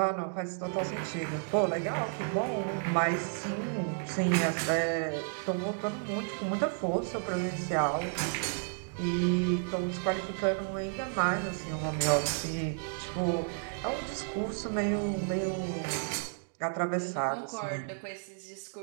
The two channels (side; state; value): left; silent; 56 dB below the other